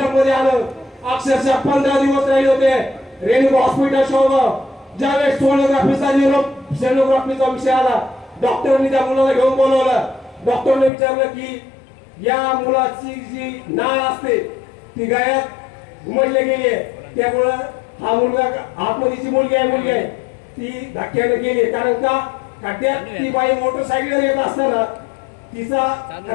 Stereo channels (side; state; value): right; drops out; at 10.9 s